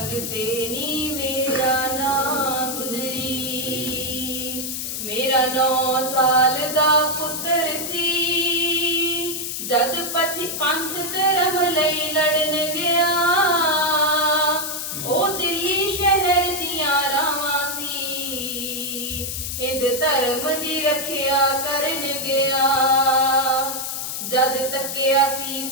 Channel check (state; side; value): noise; left; hiss, 4 dB below the sound